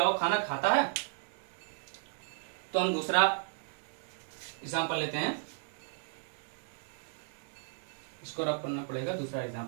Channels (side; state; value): left; silent; digital silence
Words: वो खाना खाता है। तो हम दूसरा एग्जांपल लेते हैं, इसको रब करना पड़ेगा, दूसरा